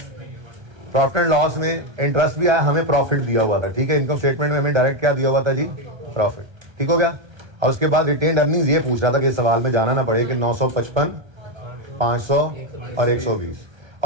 प्रॉफिट एंड लॉस में इंटरेस्ट भी आया, हमें प्रॉफिट दिया हुआ था, ठीक है। इनकम स्टेटमेंट में हमें डायरेक्ट क्या दिया हुआ था जी, प्रॉफिट, ठीक हो गया। और उसके बाद रिटेन अर्निंग्स ये पूछ रहा था कि इस सवाल में जाना ना पड़े कि 955, 500 और 120।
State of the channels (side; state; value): left; late; 1.3 ms